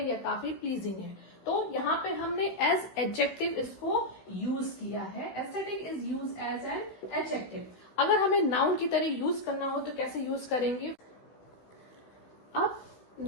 या काफी प्लीजिंग है। तो यहाँ पे हमने एज एडजेक्टिव इसको यूज किया है। Aesthetic is use as an adjective. अगर हमें नाउन की तरह यूज करना हो तो कैसे यूज करेंगे? अब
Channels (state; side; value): late; right; 16 ms